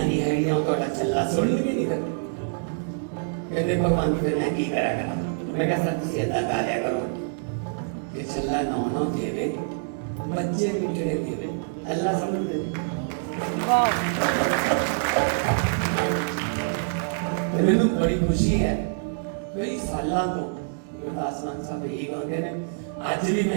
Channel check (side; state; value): left; silent; digital silence